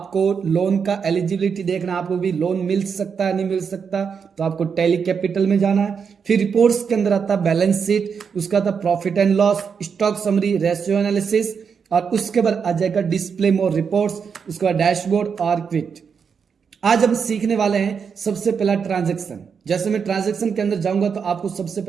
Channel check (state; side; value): quieter; left; 6.4 dB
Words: लोन का एलिजिबिलिटी देखना, आपको भी लोन मिल सकता है नहीं मिल सकता, तो आपको टेली कैपिटल में जाना है। फिर रिपोर्ट्स के अंदर आता है बैलेंस शीट, उसका आता profit and loss, stock summary, ratio analysis, और उसके बाद आ जाएगा डिस्प्ले मोर रिपोर्ट्स, उसके बाद डैशबोर्ड और क्विट। आज हम सीखने वाले हैं सबसे पहला ट्रांजैक्शन। जैसे मैं ट्रांजैक्शन के अंदर जाऊंगा तो आपको सबसे